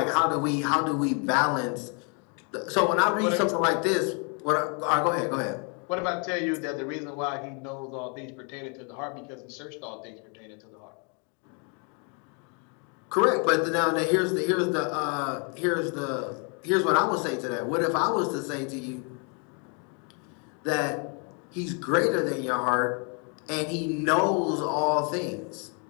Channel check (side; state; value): right; quieter; 37.2 dB